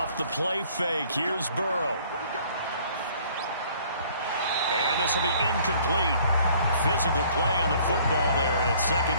the play fake, here's Burrow. And this will be incomplete. Physical play on the football there, and it's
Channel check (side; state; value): both; inverted; correlation -0.57